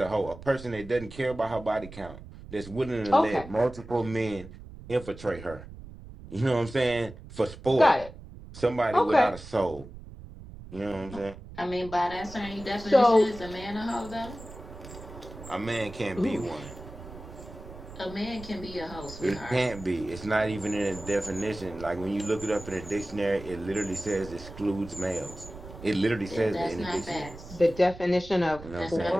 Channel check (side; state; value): right; noise; rumble, 15 dB below the sound